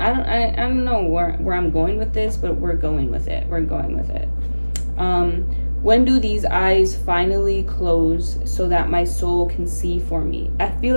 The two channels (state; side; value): inverted; both; correlation -1.00